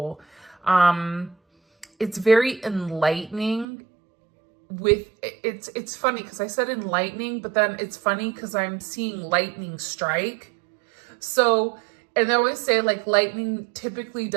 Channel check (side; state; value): left; drops out; at 3.7 s